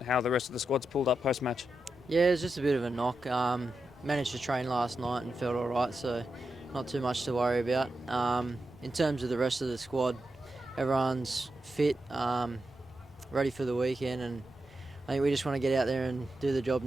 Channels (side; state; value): both; normal; correlation 0.88